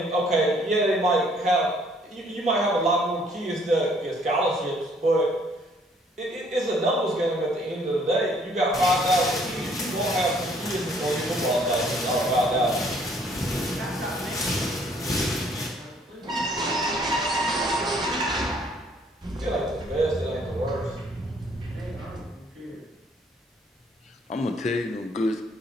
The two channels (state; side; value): normal; both; correlation 0.62